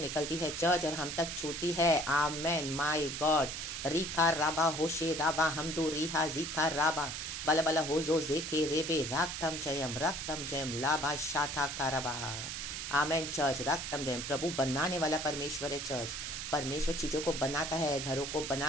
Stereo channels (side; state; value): right; noise; hiss, 5 dB below the sound